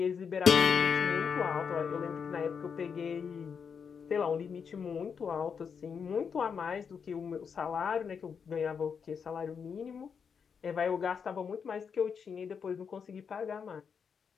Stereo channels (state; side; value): quieter; right; 6.5 dB